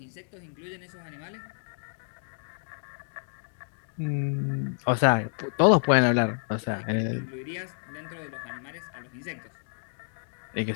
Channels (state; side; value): silent; right; digital silence